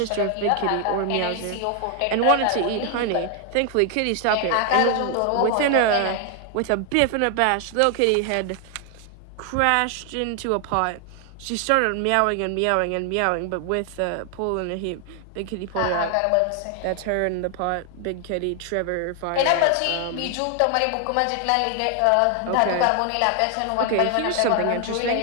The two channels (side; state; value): both; different; correlation 0.00